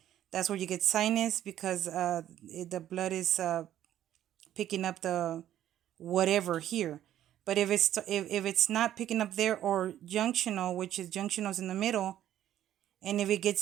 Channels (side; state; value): left; quieter; 11.8 dB